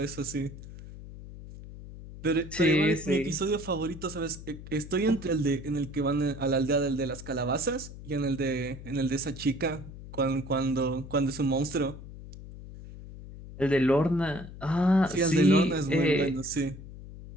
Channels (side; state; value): left; noise; hum, 14 dB below the sound